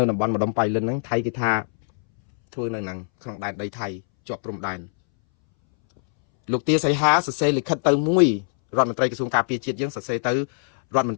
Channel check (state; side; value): silent; right; 63 dB below the other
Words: ៅតំបន់ម្ដុំបៃលិនហ្នឹងថៃគេថាធ្វើនៅហ្នឹងក្នុងដែនដីថៃជាប់ព្រំដែនលោកទាសីហាសរសេរលិខិតទៅមួយរដ្ឋមន្ត្រីក្រសួងការពារជាតិយើងសរសេរទៅរដ្ឋមន